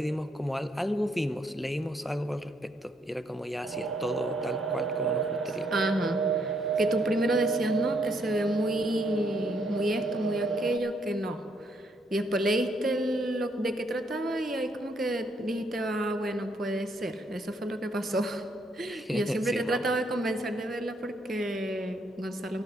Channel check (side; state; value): both; normal; correlation 0.72